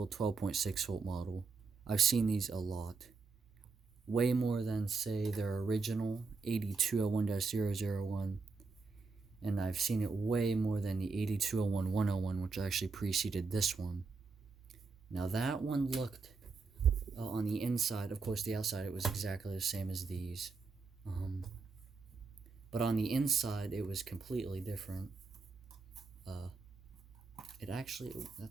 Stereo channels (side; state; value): left; quieter; 4.4 dB